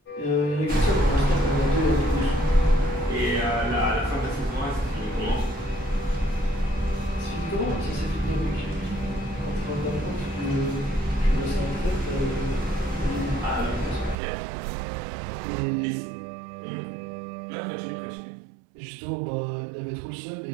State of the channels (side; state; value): left; drops out; at 14.2 s